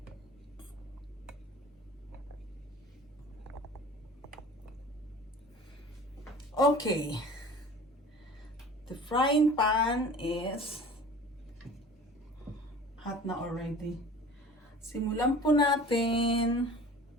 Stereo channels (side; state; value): both; normal; correlation 0.42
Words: Okay. The frying pan is hot na already. Simulan po natin.